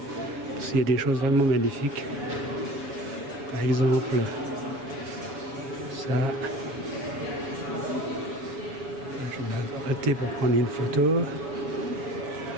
s'il y a des choses vraiment magnifiques. Par exemple, ça. Je vais m'arrêter pour prendre une photo.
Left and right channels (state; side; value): late; left; 7.0 ms